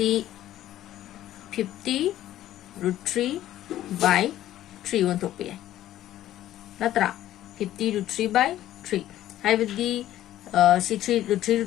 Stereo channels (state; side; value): quieter; right; 13.3 dB